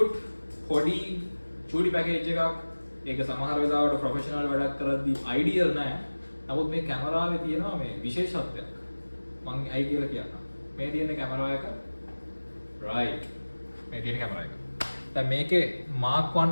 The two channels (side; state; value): both; inverted; correlation -1.00